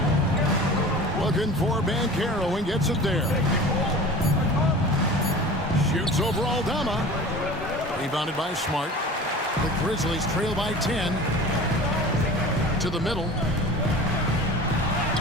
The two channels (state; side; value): normal; both; correlation 0.39